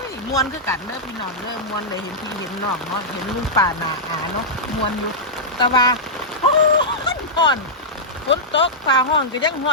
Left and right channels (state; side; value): normal; both; correlation -0.11